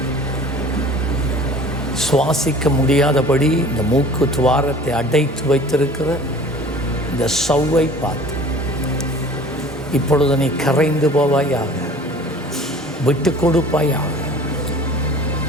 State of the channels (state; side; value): normal; both; correlation 0.45